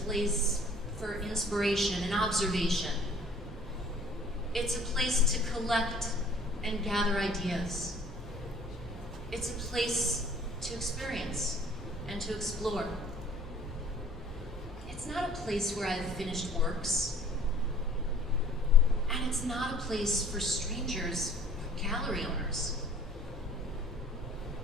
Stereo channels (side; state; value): both; normal; correlation 0.53